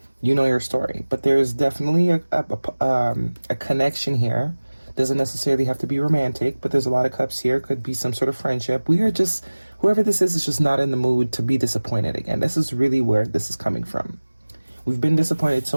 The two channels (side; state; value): both; inverted; correlation -1.00